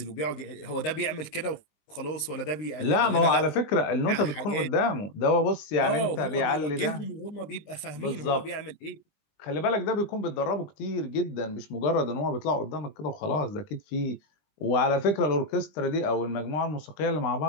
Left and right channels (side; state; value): right; late; 20 ms